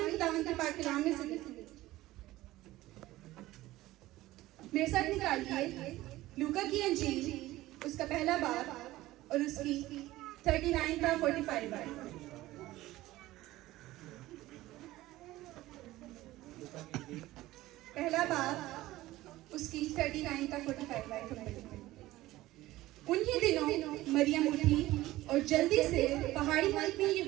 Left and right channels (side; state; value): left; quieter; 16.9 dB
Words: खुदावंद के पाक कलाम में से मेरे साथ निकालिए लूका की अंजील उसका पहला बाब और उसकी 39 का 45 बार। पहला बाब उसकी 39 का 45 बार। उन्हीं दिनों मरियम उठी और जल्दी से पहाड़ी मुल्क में